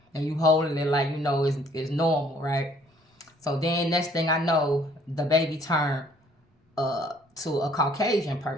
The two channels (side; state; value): both; normal; correlation 0.60